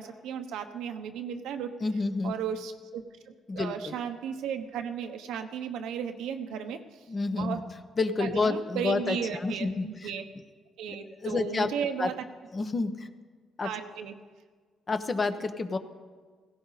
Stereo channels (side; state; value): both; normal; correlation 0.74